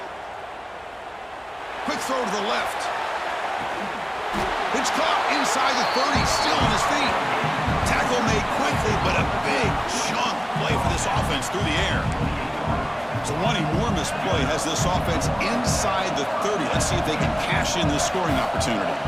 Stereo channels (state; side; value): identical; both; correlation 1.00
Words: Quick throw to the left. It's caught inside the 30, still on his feet. Tackle made quickly, but a big chunk play for this offense through the air. So one enormous play has this offense inside the 30. Let's see if they can cash in this scoring opportunity.